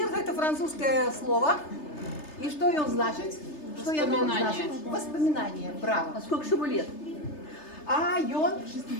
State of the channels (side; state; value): right; late; 3.3 ms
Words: – это французское слово. И что он значит? Что оно значит? Воспоминание. Браво. А сколько же ему лет? А он